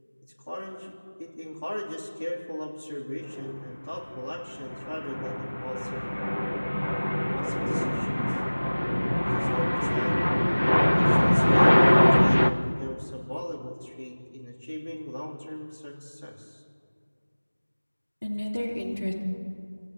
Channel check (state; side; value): inverted; both; correlation -1.00